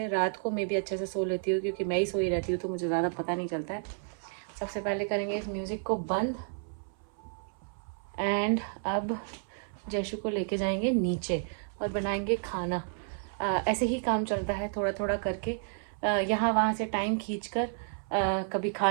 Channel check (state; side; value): silent; left; 57 dB below the other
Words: रात को मैं भी अच्छे से सो लेती हूँ क्योंकि मैं ही सोई रहती हूँ तो मुझे ज़्यादा पता नहीं चलता है। सबसे पहले करेंगे इस म्यूज़िक को बंद एंड अब जयशु को लेके जाएंगे नीचे और बनाएंगे खाना। ऐसे ही काम चलता है थोड़ा थोड़ा करके, यहाँ वहाँ से टाइम खींचकर कभी